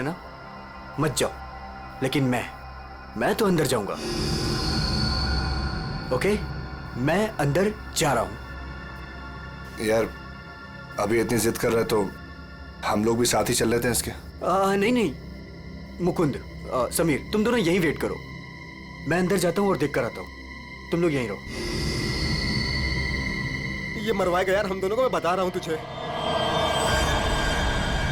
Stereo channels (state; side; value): identical; both; correlation 1.00